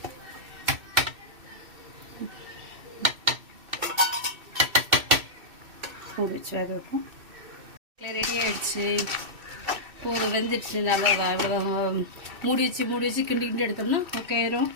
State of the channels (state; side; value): late; left; 2.6 ms